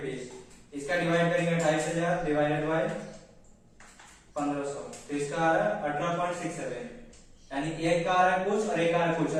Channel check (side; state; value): both; identical; correlation 1.00